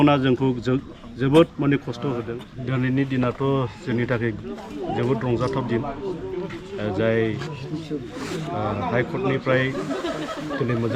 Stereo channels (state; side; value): identical; both; correlation 1.00